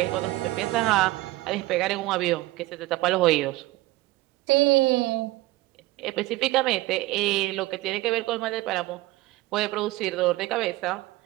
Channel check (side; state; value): left; quieter; 18.7 dB